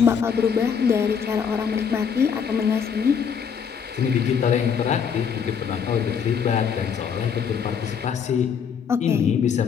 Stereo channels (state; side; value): quieter; right; 7.0 dB